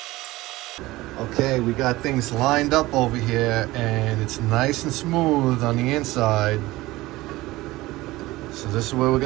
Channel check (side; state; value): left; quieter; 18.8 dB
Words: Okay, we got things lined up over here and it's nice and smooth on the inside. So this is where we're